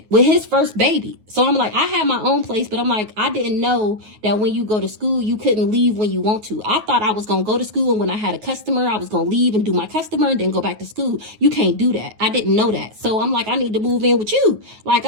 with his first baby. So I'm like, I had my own place, but I'm like, I didn't know that when you go to school, you couldn't leave when you want to. I thought I was going to go to school, and when I had a customer, I was going to leave and do my customer and then go back to school. You can't do that. I didn't know that. So I'm like, I need to move in with you. Like,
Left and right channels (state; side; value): late; left; 9.4 ms